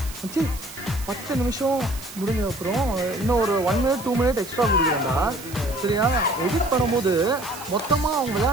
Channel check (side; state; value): right; noise; hiss, 15 dB below the sound